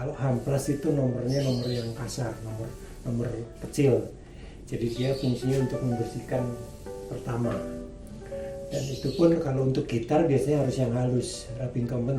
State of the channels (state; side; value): identical; both; correlation 1.00